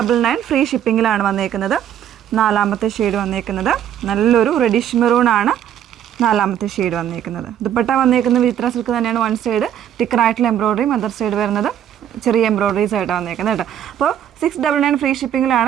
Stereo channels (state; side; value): quieter; left; 10.1 dB